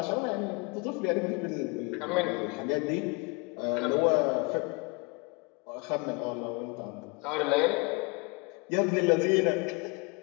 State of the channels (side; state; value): right; quieter; 29.9 dB